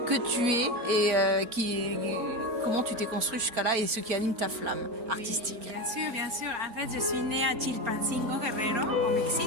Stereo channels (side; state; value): left; late; 4.4 ms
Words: que tu es et comment tu t'es construit jusqu'à là et ce qui anime ta flamme artistique? Bien sûr, bien sûr. En fait, je suis née à Chilpancingo, Guerrero, au